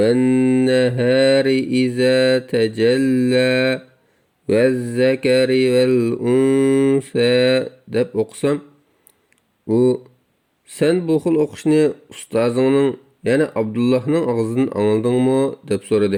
nahari iza tajalla vaz-zakari val unsa deb o'qisam, u sen bu xil o'qishni ustozingning, ya'ni Abdullahning og'zidan angladingmi deb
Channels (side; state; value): both; identical; correlation 1.00